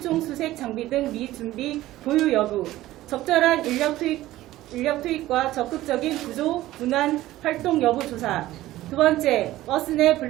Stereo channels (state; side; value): quieter; left; 15.7 dB